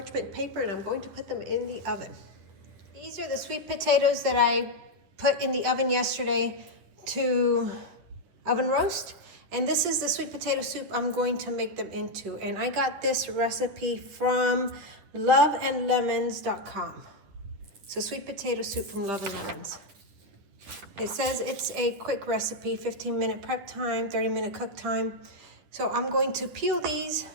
paper and I'm going to put them in the oven. These are the sweet potatoes that I put in the oven yesterday to oven roast. And this is the sweet potato soup I'm going to make them into. And I got this recipe from loveandlemons.com. So sweet potato soup from Love and Lemons. It says it's a quick recipe, 15-minute prep time, 30-minute cook time. So I'm going to peel these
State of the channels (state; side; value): late; left; 10 ms